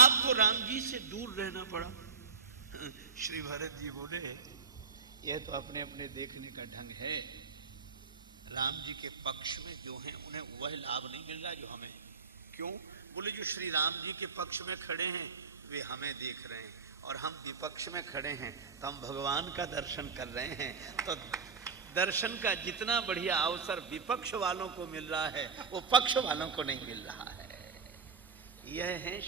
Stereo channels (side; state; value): left; quieter; 5.2 dB